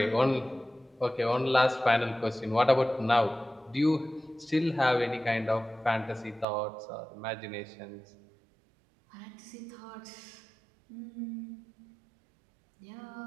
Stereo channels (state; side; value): drops out; left; at 6.5 s